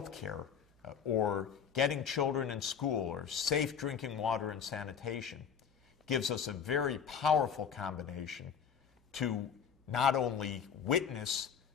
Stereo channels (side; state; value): right; quieter; 7.4 dB